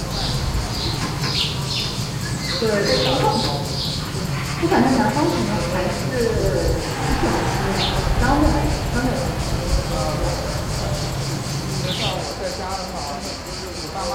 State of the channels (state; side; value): identical; both; correlation 1.00